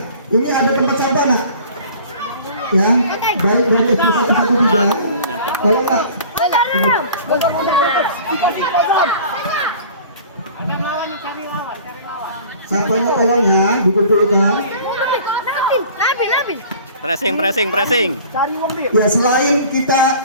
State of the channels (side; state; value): both; inverted; correlation -0.46